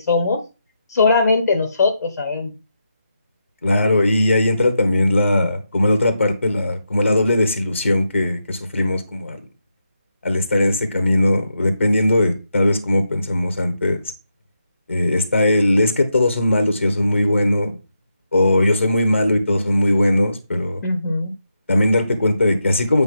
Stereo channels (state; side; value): inverted; both; correlation -0.84